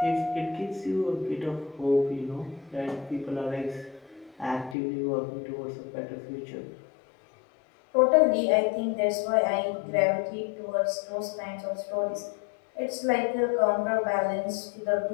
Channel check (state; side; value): drops out; right; at 4.8 s